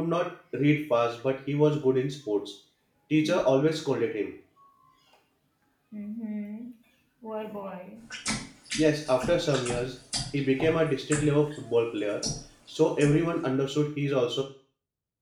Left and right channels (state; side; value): identical; both; correlation 1.00